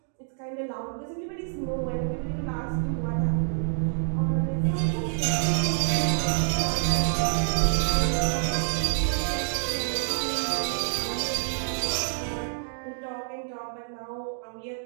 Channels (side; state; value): left; silent; digital silence